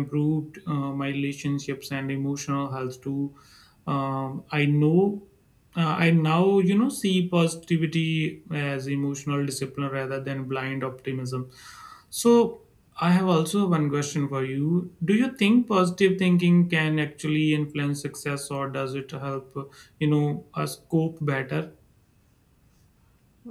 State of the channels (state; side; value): identical; both; correlation 1.00